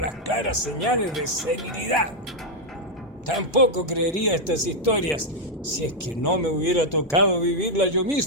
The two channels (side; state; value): both; normal; correlation -0.01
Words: claras señales de serenidad. Tampoco creería estas historias si es que no me hubiera tocado vivirlas yo